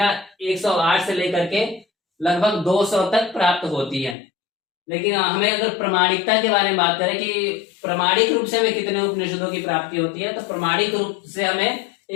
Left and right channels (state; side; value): drops out; right; at 4.2 s